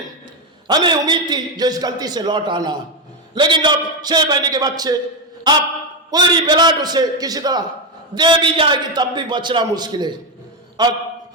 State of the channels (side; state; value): both; normal; correlation 0.09